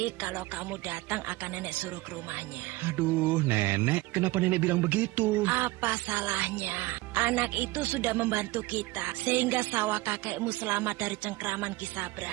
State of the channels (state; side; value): quieter; left; 20.3 dB